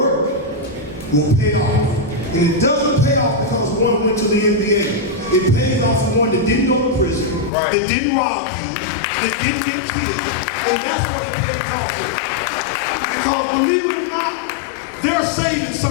will pay off. And it doesn't pay off because one went to the NBA. It pays off for one that didn't go to prison, that didn't rob you, that didn't get killed. And that's what it pays off for. Because believe it or not, they're saving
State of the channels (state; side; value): drops out; right; at 7.5 s